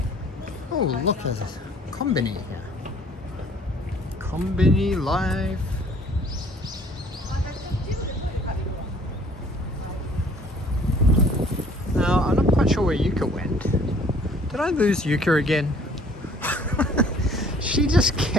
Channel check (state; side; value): normal; both; correlation 0.55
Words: Oh, look, there's a Konbini here. Konbini Live. Now, I'm not quite sure where Yuka went. Did I lose Yuka again? She just